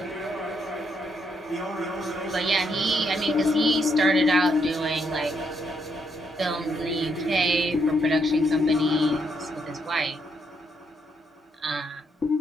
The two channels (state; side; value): normal; both; correlation 0.76